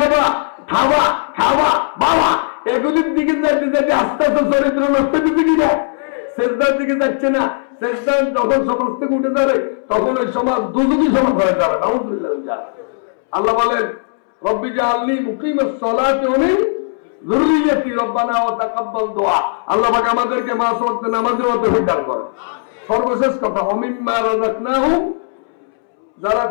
খাবা খাবা বাবা এগুলির দিকে যাইতে যাইতে আস্তে আস্তে চরিত্র নষ্ট হচ্ছে কিনা? সেজদার দিকে যাচ্ছে না। সেজদার যখন সমাজ থেকে উঠে যাবে তখন ওই সমাজ দুজনই সমাজ হয়ে যাবে। নাউযুবিল্লাহ। আল্লাহ বলেন রব্বি জাআলনি মুকিমাস সালাতি ওয়া মিন যুররিয়্যাতি রব্বানা ওয়া তাকাব্বাল দুআ। আল্লাহ পাক আমাদেরকে পাঁচ ওয়াক্ত নামাজে তৌফিক দান করুন। সর্বশেষ কথা ওমিম্মা রাযাকনাহুম। যারা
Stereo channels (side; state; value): right; silent; 68 dB below the other